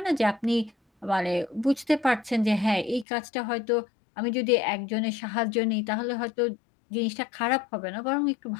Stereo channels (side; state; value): right; drops out; at 3.1 s